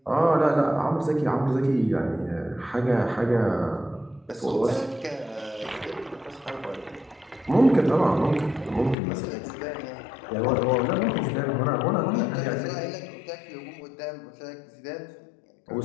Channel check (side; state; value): right; drops out; at 9.0 s